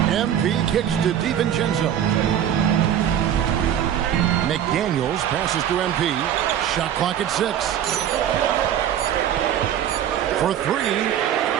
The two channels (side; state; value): left; quieter; 10.1 dB